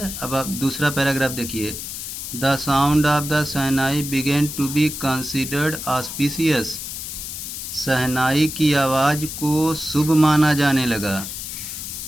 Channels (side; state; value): left; noise; hiss, 7 dB below the sound